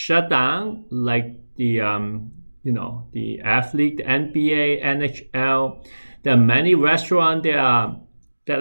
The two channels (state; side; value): inverted; both; correlation -1.00